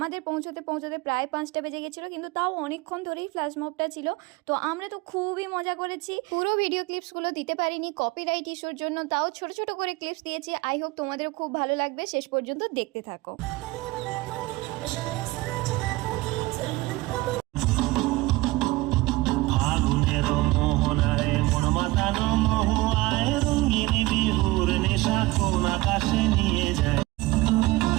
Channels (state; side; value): quieter; left; 20.4 dB